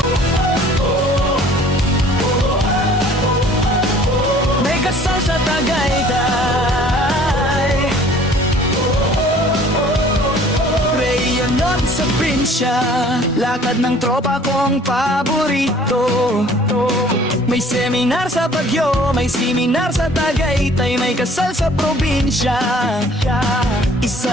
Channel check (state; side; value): normal; both; correlation 0.53